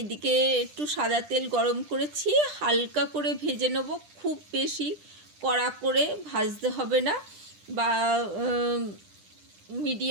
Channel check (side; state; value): left; late; 10 ms